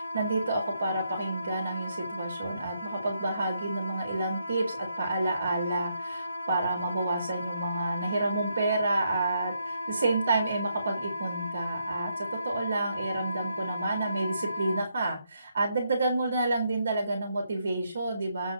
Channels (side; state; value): both; inverted; correlation -0.78